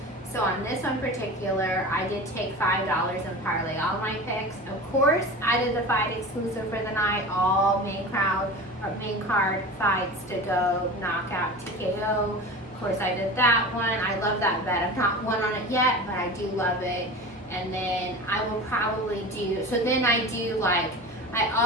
So on this one particular, I did take $5 and parlay all my picks. Of course, I did the fight exclusive for the night, all main card fights to go knockout TKO. Of course, I did that one. I love that bet. I've not won on it yet, but I do love it. And then I will probably do, so then I do like, I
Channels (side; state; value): both; normal; correlation 0.32